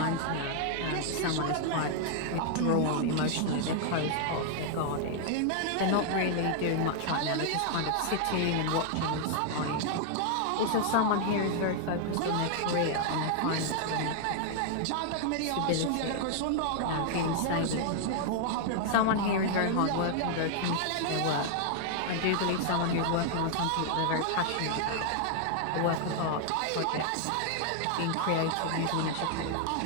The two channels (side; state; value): both; different; correlation 0.00